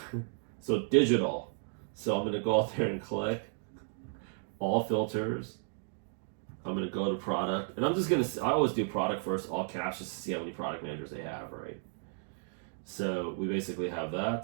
So digital. So I'm gonna go out there and click all filters. I'm gonna go to product, and I'm just gonna. I always do product first, all caps, just to see how many product managers they have, right? So we basically have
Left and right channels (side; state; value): left; silent; 55 dB below the other